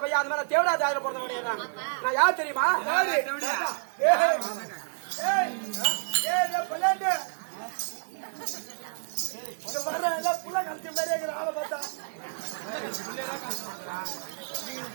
பையன் அந்த மாதிரி தேவடா தேவையில பிறந்த நான் யார் தெரியுமா? புள்ள கழிச்ச மாதிரி ஆளை பார்த்தா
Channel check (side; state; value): left; silent; digital silence